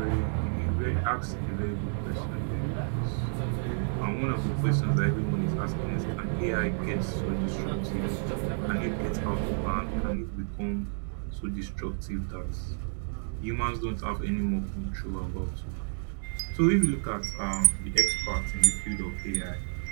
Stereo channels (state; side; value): silent; left; digital silence